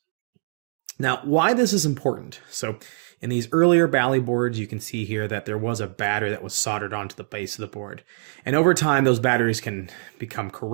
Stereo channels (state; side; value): silent; left; digital silence